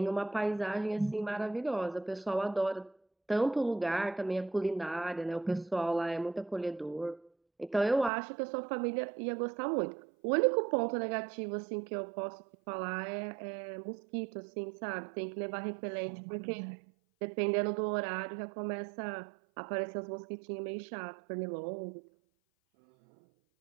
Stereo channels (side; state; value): left; drops out; at 8.1 s